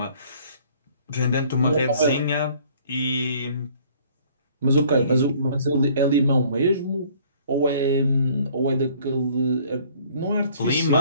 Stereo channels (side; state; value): both; inverted; correlation -0.57